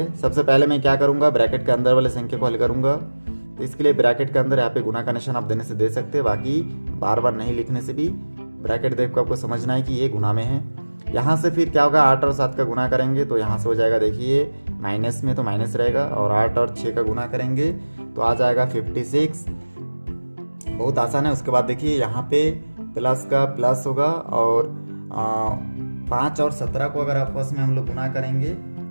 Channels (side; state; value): both; inverted; correlation -1.00